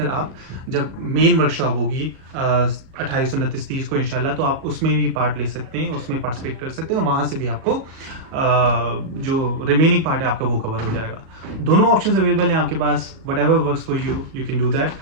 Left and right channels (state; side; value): late; left; 37 ms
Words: आप जब मेन वर्कशॉप होगी 28, 29, 30 को इंशाल्लाह, तो आप उसमें भी पार्ट ले सकते हैं, उसमें पार्टिसिपेट कर सकते हैं और वहाँ से भी आपको जो रिमेनिंग पार्ट है आपका वो कवर हो जाएगा। दोनों ऑप्शंस अवेलेबल हैं आपके पास, whatever works for you, you can do that.